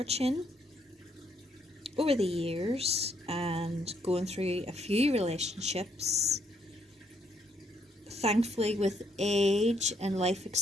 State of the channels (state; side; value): normal; both; correlation 0.72